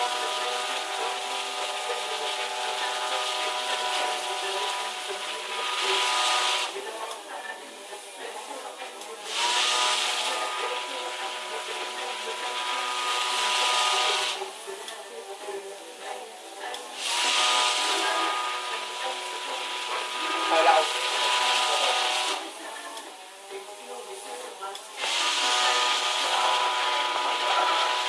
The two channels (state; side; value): identical; both; correlation 1.00